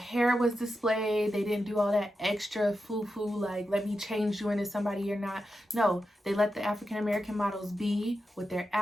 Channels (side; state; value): both; normal; correlation 0.89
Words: was displayed. They didn't do all that extra foo-foo, like, let me change you into somebody you're not. No, they let the African American models be with their